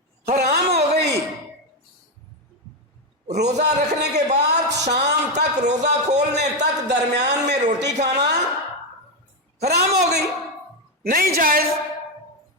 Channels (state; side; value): normal; both; correlation 0.07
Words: حرام ہو گئی۔ روزہ رکھنے کے بعد شام تک، روزہ کھولنے تک درمیان میں روٹی کھانا حرام ہو گئی، نہیں جائز۔